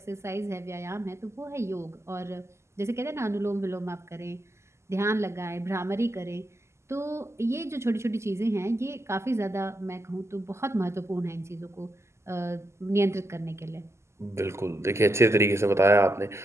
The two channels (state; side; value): late; left; 0.13 ms